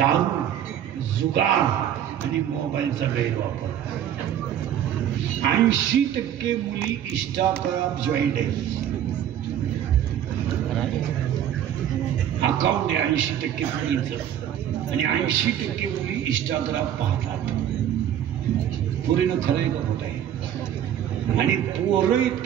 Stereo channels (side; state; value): left; quieter; 10.4 dB